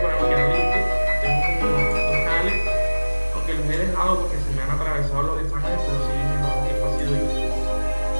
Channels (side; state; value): both; inverted; correlation -1.00